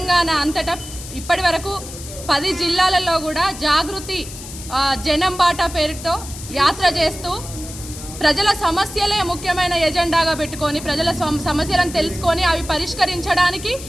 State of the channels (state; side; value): noise; left; hiss, 13 dB below the sound